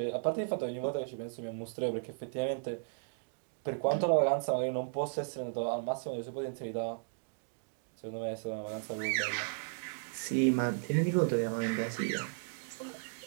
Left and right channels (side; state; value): left; silent; digital silence